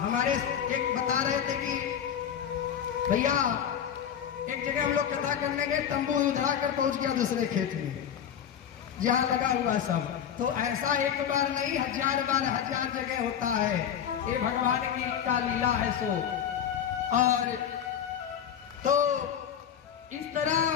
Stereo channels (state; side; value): quieter; right; 8.9 dB